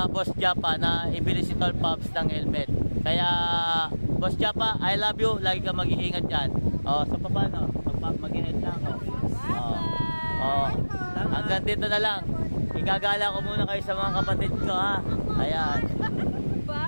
Japa na ibili si Tol Pops ng helmet. Kaya Boss Japa, I love you. Lagi ka mag-iingat dyan. So paano? Mag-iingat lang hanggang dito na lang. Igagala ko muna kayo sa mga kapatid ko, ha. Ayan.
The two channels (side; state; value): both; inverted; correlation -1.00